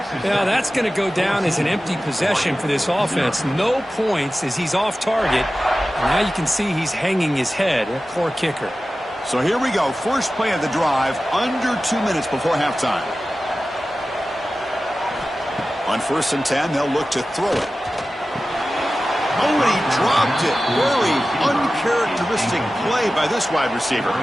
Yeah, that's going to go down as an empty possession for this offense. No points as he's off target. And now you can see he's hanging his head. A poor kicker. So here we go. First play of the drive, under 2 minutes before halftime. On 1st and 10, they'll look to throw it. Oh, and he dropped it. Very uncharacteristic play by this wide receiver.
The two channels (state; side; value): normal; both; correlation 0.95